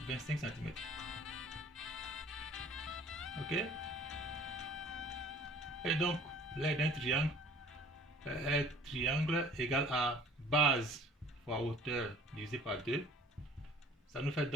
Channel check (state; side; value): normal; both; correlation 0.51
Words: 25 cm. Ok? Et donc l'aire d'un triangle est triangle égal à base fois hauteur divisé par 2. Ça nous fait